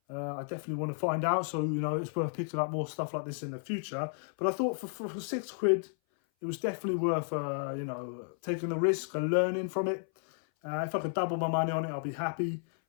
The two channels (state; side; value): silent; right; 56 dB below the other